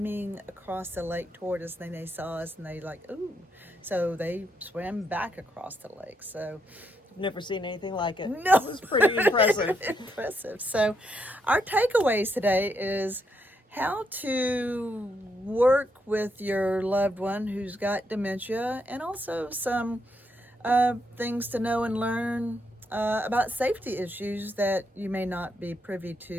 across the lake toward us. And they saw us and they like, ooh. So they swam back across the lake. So I've never seen anything like it. No. It was pretty impressive. Impressive. So our takeaways today is how to work with your loved one who's got dementia, and also some things to know and learn about safety issues that you may not be privy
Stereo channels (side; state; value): both; normal; correlation 0.78